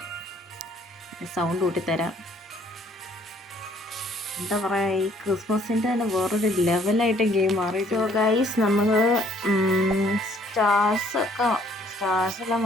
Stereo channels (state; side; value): normal; both; correlation 0.62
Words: സൗണ്ട് കൂട്ടിത്തരാം. എന്താ പറയുക, ഈ ക്രിസ്മസിൻ്റെ തന്നെ വേറൊരു ലെവലായിട്ട് ഗെയിം മാറി. സോ ഗൈസ് നമ്മൾ സ്റ്റാർസ്